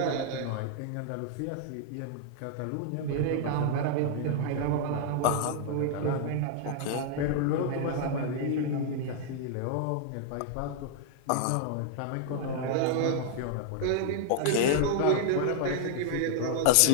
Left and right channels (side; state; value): both; different; correlation -0.01